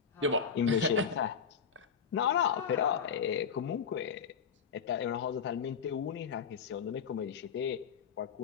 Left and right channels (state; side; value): quieter; right; 6.7 dB